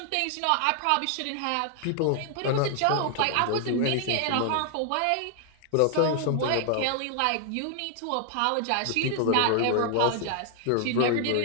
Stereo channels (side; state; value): both; different; correlation 0.00